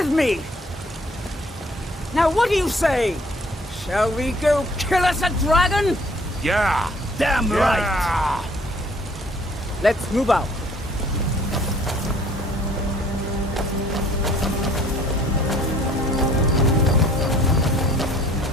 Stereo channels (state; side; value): normal; both; correlation 0.57